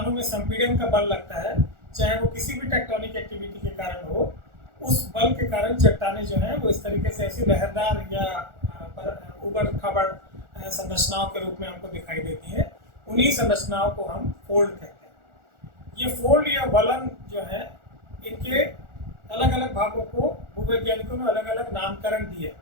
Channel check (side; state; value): left; late; 1.4 ms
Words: में संपीड़न का बल लगता है, चाहे वो किसी भी टेक्टोनिक एक्टिविटी के कारण हो, उस बल के कारण चट्टानें जो हैं वो इस तरीके से ऐसी लहरदार या उबड़ खाबड़ संरचनाओं के रूप में हमको दिखाई देती हैं। उन्हीं संरचनाओं को हम फोल्ड कहते हैं। ये फोल्ड या वलन जो है, इनके अलग अलग भागों को भूवैज्ञानिकों ने अलग अलग नामकरण दिए।